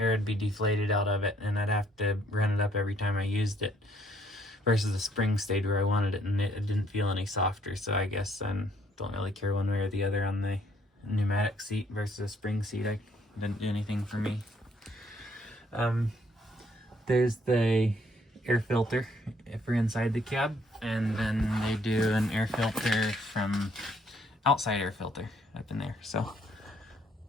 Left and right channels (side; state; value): both; normal; correlation 0.66